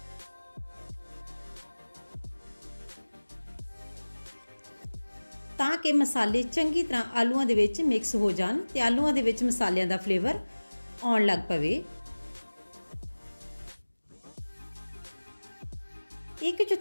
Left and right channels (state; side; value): inverted; both; correlation -1.00